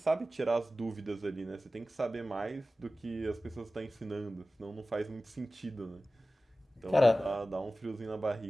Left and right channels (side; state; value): both; normal; correlation 0.96